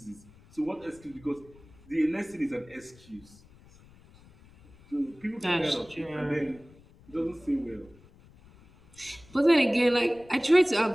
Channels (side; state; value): left; noise; rumble, 25 dB below the sound